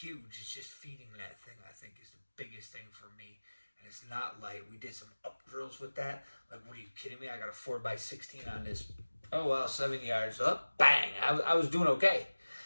It's just feeding that thing, I think, is the biggest thing for me. And it's not light. We did some up drills with that. Like, what are you kidding me? I got a 4x16 on this. Oh, well, 7 yards up. Bang. I was doing okay.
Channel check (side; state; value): both; inverted; correlation -1.00